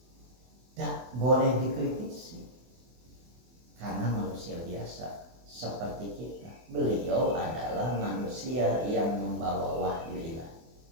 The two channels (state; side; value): late; left; 24 ms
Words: tak boleh dikritisi karena manusia biasa seperti kita. Beliau adalah manusia yang membawa wahyu ilahi.